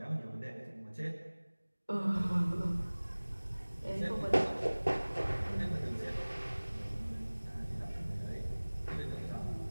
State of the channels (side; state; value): both; inverted; correlation -1.00